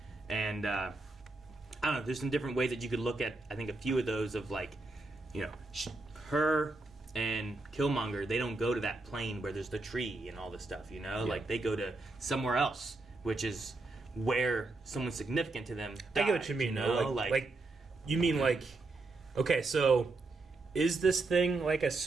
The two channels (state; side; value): quieter; left; 3.2 dB